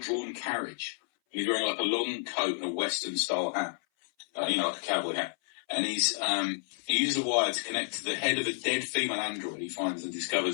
carriage. He's wearing like a long coat and a Western-style hat, like a cowboy hat. And he uses a wire to connect to the head of a dead female android he finds and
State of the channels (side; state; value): right; silent; 57 dB below the other